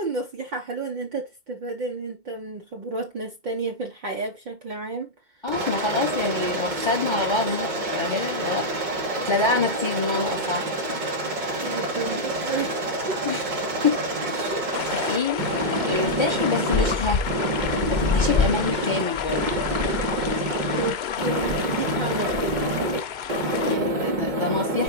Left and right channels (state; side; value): late; left; 2.2 ms